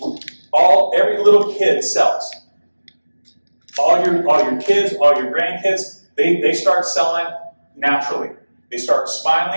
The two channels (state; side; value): inverted; both; correlation -1.00